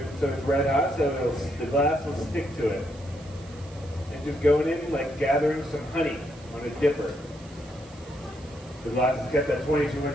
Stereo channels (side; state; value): right; noise; hiss, 24 dB below the sound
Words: so it's red hot, so the glass will stick to it. And just going in like gathering some honey on a dipper. The glass is kept at